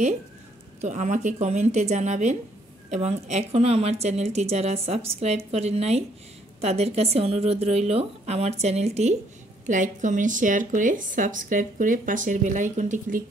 তো আমাকে কমেন্টে জানাবেন, এবং এখনও আমার চ্যানেলটি যারা সাবস্ক্রাইব করেন নাই তাদের কাছে অনুরোধ রইল আমার চ্যানেলটি লাইক কমেন্ট শেয়ার করে সাবস্ক্রাইব করে পাশের বেল আইকনটি ক্লিক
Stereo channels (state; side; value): normal; both; correlation 0.67